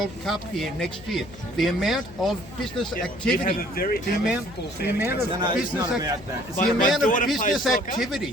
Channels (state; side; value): noise; left; hum, 19 dB below the sound